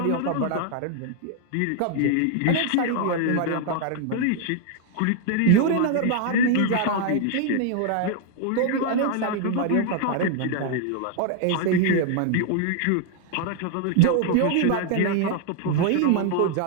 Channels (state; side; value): different; both; correlation 0.00